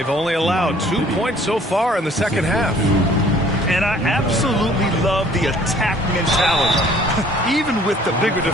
only allowed 2 points so far in the second half. And I absolutely love the attack mentality, even with the bigger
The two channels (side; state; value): both; normal; correlation 0.56